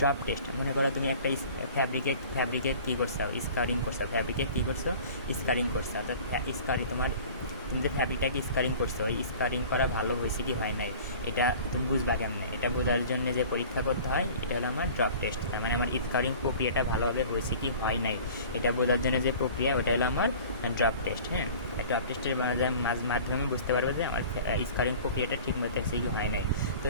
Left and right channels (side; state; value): both; inverted; correlation -0.44